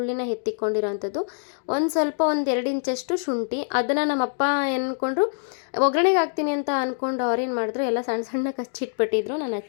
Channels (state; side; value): silent; right; digital silence